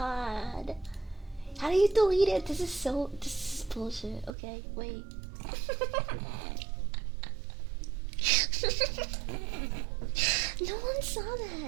How do you delete it? This is bullshit. Okay, wait. No one saw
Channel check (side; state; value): left; drops out; at 4.4 s